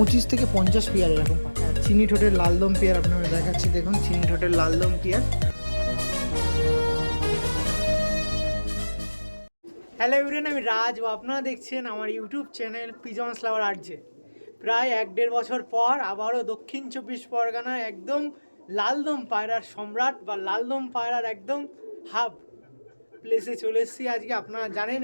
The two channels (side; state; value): both; inverted; correlation -1.00